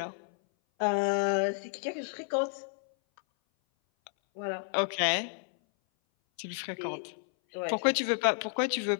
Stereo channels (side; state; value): right; silent; 57 dB below the other